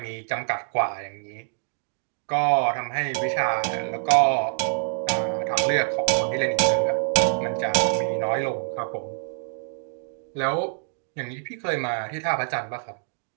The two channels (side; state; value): left; silent; digital silence